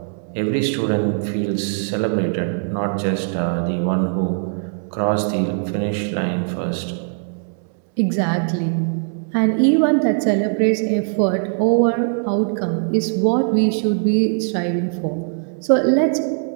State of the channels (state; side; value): silent; left; digital silence